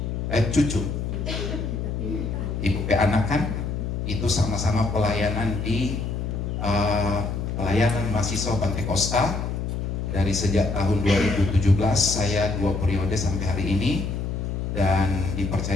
cucu. Ibu anak kan, itu sama-sama pelayanan di pelayanan mahasiswa Pantai Costa. Dari sejak tahun 2017 saya 2 periode sampai hari ini, dan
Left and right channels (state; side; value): noise; left; hum, 3 dB below the sound